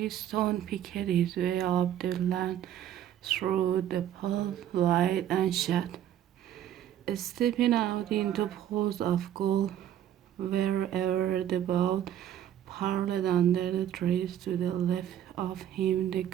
picked his way up the land through the pale light and shut, stepping out into pools of gold wherever the boat parled under the trees. To the left of him the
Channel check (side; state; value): left; quieter; 11.0 dB